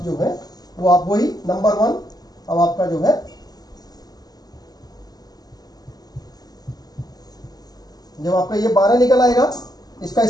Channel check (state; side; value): late; right; 0.19 ms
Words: जो है वो आप वही नंबर 1, अब आपका जो है जब आपका ये 12 निकल आएगा, इसका